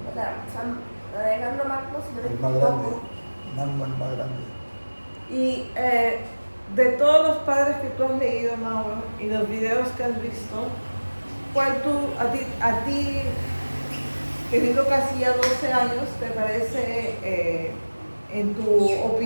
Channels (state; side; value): inverted; both; correlation -1.00